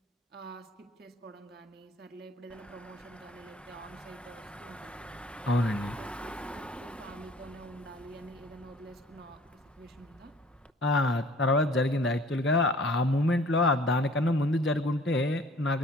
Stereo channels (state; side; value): normal; both; correlation 0.52